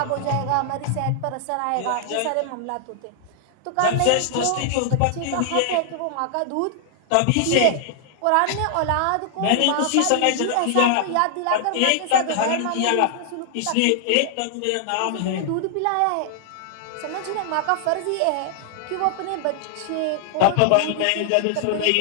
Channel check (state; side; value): different; both; correlation -0.01